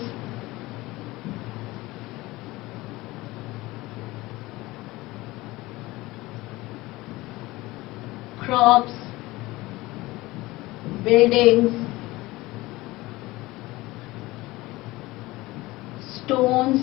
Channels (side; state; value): right; quieter; 19.8 dB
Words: crops, buildings, stones